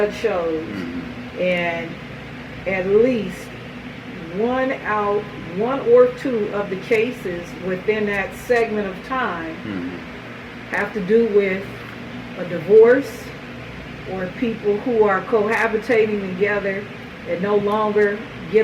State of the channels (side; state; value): both; identical; correlation 1.00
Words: shows, and at least one or two of the cases within that segment of time have to do with a divorce or people who are cohabitating together and no longer